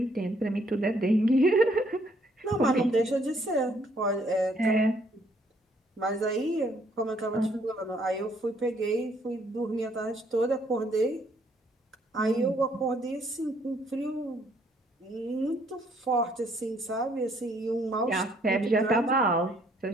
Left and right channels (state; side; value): normal; both; correlation 0.66